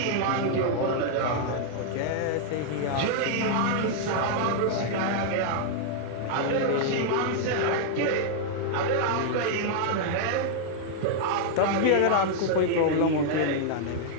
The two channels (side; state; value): both; different; correlation -0.01